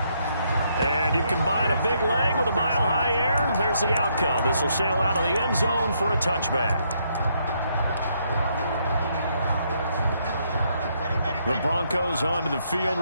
And you combine a big leg with a mile-high air, there's the outcome. This will sail out of the end zone for a touchback. The Broncos onto the field,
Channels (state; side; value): inverted; both; correlation -0.74